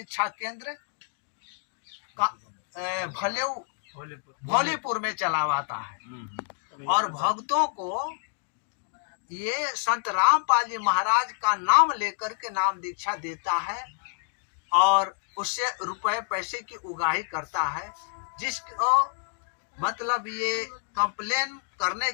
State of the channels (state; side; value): silent; right; digital silence